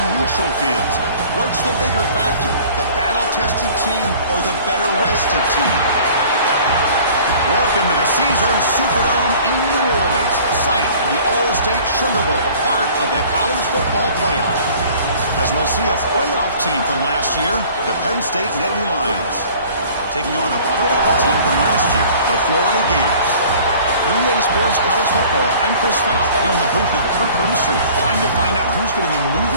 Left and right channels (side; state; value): both; inverted; correlation -0.49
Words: neutral fields. What's the bigger factor, the battle-tested team or the better-rested team? Welcome to the Caesars Superdome in New Orleans, site of the All-State Sugar Bowl, part of the college football playoff. As we'll see a playoff team from last year, the Penn State Nittany Lions, taking on a playoff team from last year, the Florida Gators. 3A Sports College Football, I'm Chris Falk here in the booth with Kirk Hermstreet. Time to find out who's going to be